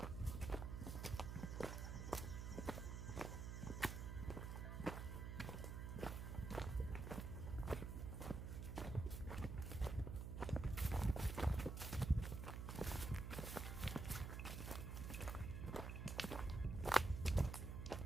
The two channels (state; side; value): noise; right; hum, 5 dB below the sound